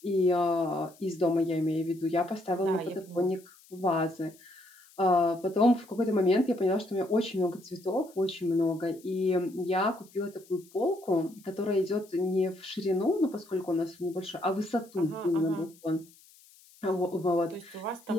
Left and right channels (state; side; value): noise; left; hiss, 26 dB below the sound